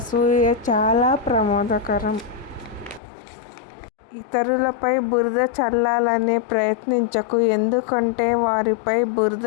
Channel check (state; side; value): drops out; right; at 3.0 s